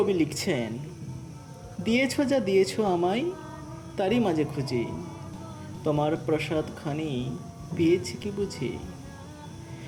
লিখছেন, দিয়েছ যা দিয়েছ আমায়, তারই মাঝে খুঁজি তোমার প্রসাদ খানি পেয়েছি কি বুঝি।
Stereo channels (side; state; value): both; identical; correlation 1.00